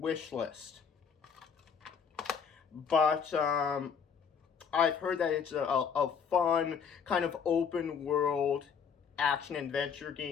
list. But I've heard that it's a fun, kind of open world action-adventure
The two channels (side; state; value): right; quieter; 6.7 dB